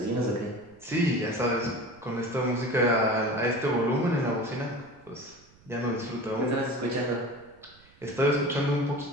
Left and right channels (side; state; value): right; noise; rumble, 28 dB below the sound